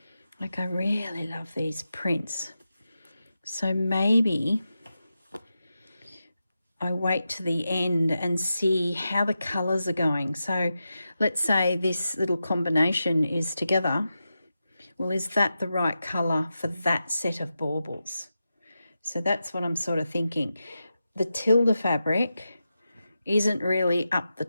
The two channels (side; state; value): both; inverted; correlation -0.90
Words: Like, I really love these prints. So maybe I wait to the end and see how the colours are going. So let's say this little combination is together. Well, is that the right colour for that set of baubles? So that's what I'm sort of thinking. The tilde fabric isn't really up the